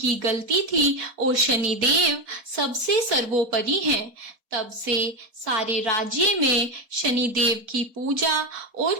गलती थी और शनिदेव सबसे सर्वोपरि हैं। तब से सारे राज्य में शनिदेव की पूजा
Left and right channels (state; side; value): late; left; 4.2 ms